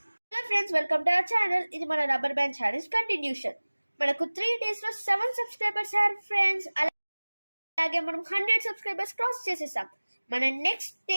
Hello friends, welcome to our channel. ఇది మన రబ్బర్ బ్యాండ్ ఛాలెంజ్ కంటిన్యూషన్. మనకు 3 డేస్లో 7 సబ్స్క్రైబర్స్ అయ్యారు ఫ్రెండ్స్, అలాగే మనం 100 సబ్స్క్రైబర్స్ క్రాస్ చేసేసాం. మన నెక్స్ట్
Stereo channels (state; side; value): inverted; both; correlation -1.00